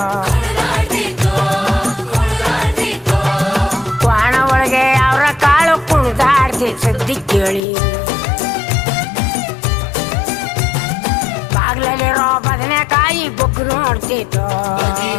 ಒಣ ಒಳಗೆ ಅವರ ಕಾಳು ಕುಣಿದಾಡ್ತಿ ಸುದ್ದಿ ಕೇಳಿ ಬಾಗ್ಲಲ್ಲಿರೋ ಬದನೆಕಾಯಿ ಬೊಗ್ಗು ನೋಡ್ತಿದ್ದೋ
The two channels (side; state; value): right; drops out; at 7.6 s